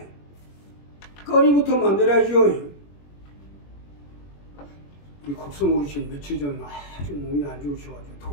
거리부터 만들어야죠. 우리 곡성 어르신 며칠 전 아주 몸이 안 좋으셔가지고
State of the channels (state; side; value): late; right; 21 ms